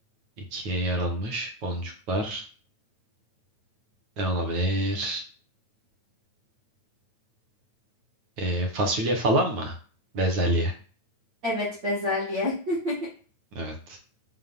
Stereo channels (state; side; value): late; left; 9.3 ms